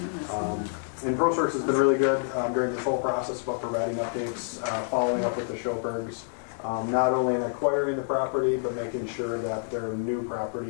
And ProSource has been really good during this whole process about providing updates, following up with the Schilbergs. Not only in acquiring the property, but making sure that their new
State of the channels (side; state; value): right; silent; digital silence